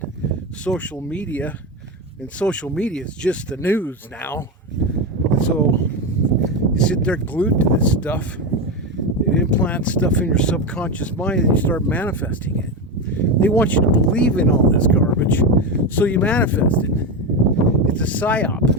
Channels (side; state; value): both; normal; correlation 0.15